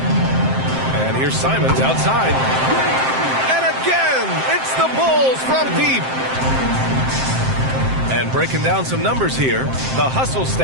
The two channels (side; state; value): left; late; 7.6 ms